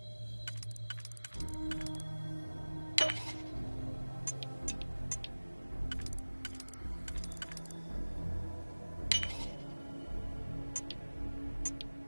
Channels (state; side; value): inverted; both; correlation -1.00